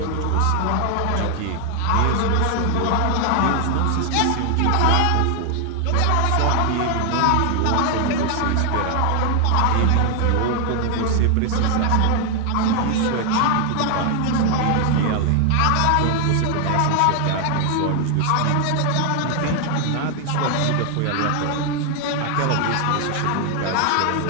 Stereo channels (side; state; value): both; different; correlation 0.00